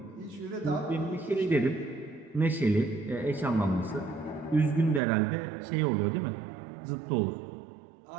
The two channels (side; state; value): left; drops out; at 5.0 s